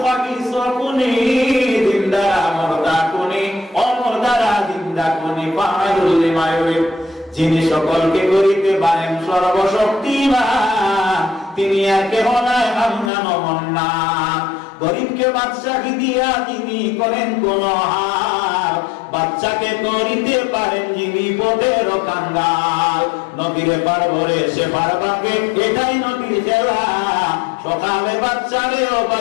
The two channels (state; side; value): drops out; right; at 13.1 s